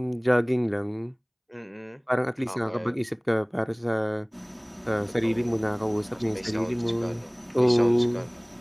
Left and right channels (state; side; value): identical; both; correlation 1.00